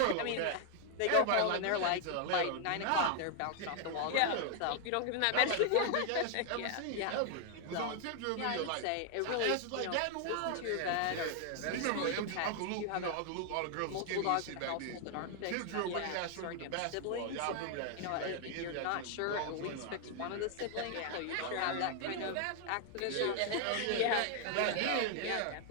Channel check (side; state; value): both; different; correlation 0.00